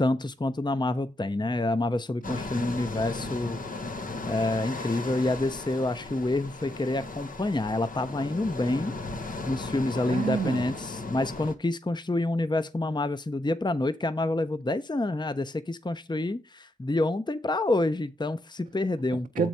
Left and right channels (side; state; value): both; normal; correlation 0.81